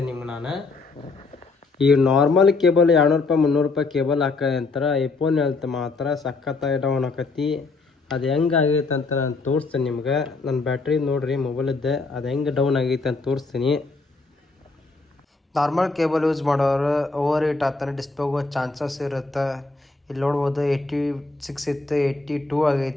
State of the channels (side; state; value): right; quieter; 3.8 dB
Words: ನಿಮ್ಗೆ ನಾನು. ಈ ನಾರ್ಮಲ್ ಕೇಬಲ್ 200 ರೂಪಾಯಿ 300 ರೂಪಾಯಿ ಕೇಬಲ್ ಅಂತಾರೆ. ಐಫೋನ್ ಹೇಳ್ತ ಮಾತ್ರ ಸಖತ್ತಾಗಿ ಡೌನ್ ಆಕತಿ. ಅದು ಹೆಂಗೆ ಆಗೈತೆ ಅಂತ ನಾನು ತೋರಿಸ್ತೇನೆ ನಿಮ್ಗೆ. ನನ್ನ ಬ್ಯಾಟ್ರಿ ನೋಡಿರಿ ಮೊಬೈಲಿದ್ದೆ ಅದು ಹೆಂಗೆ ಡೌನ್ ಆಗೈತೆ ಅಂತ ತೋರಿಸ್ತೀನಿ. ನಾರ್ಮಲ್ ಕೇಬಲ್ ಯೂಸ್ ಮಾಡೋರು ಓವರ್ ಹೀಟ್ ಆಗ್ತಾನೆ, ಡಿಸ್ಪ್ಲೇ ಹೋಗೋ ಚಾನ್ಸಸ್ ಇರುತ್ತೆ. ಇಲ್ಲಿ ನೋಡ್ಬೋದು 86 ಇತ್ತು, 82